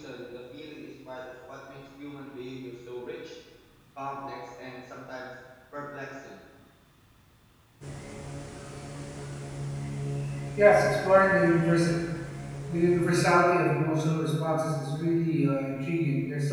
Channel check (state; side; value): identical; both; correlation 1.00